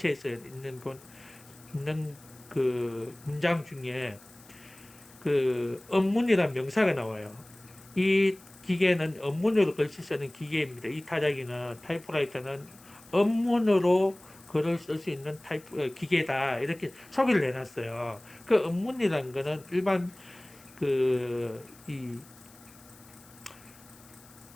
있는 그 문장 중에 그 업문이라는 명사가 나와요. 이 기계는 업문으로 글씨 쓰는 기계입니다. 이 타작이는 타이프라이터는 업문으로 글을 쓸 수 있는 기계다. 이렇게 소개를 해놨어요. 그 업문이라는 거는 일반 그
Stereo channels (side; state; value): left; noise; hiss, 24 dB below the sound